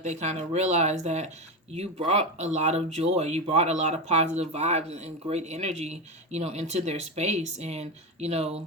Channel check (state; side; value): normal; both; correlation 0.16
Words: they kind of realize that you brought a lot of joy, you brought a lot of positive vibes and great energy, into their space. And,